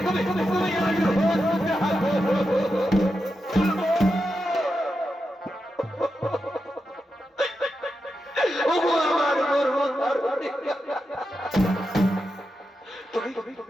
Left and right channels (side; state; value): both; normal; correlation 0.88